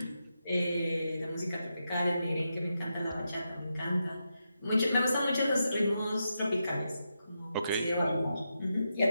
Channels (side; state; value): both; inverted; correlation -0.86